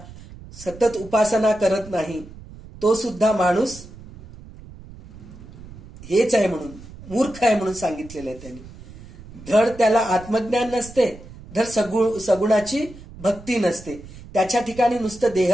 सतत उपासना करत नाही, तो सुद्धा माणूस हेच आहे म्हणून, मूर्ख आहे म्हणून सांगितलेलं आहे त्यांनी. धड त्याला आत्मज्ञान नसते, धड सगुणाची भक्ती नसते, त्याच्या ठिकाणी नुसतं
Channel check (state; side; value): noise; right; rumble, 17 dB below the sound